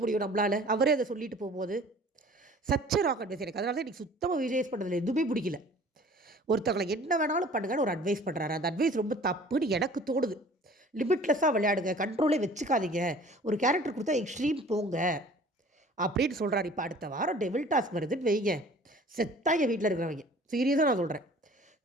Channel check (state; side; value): normal; both; correlation 0.48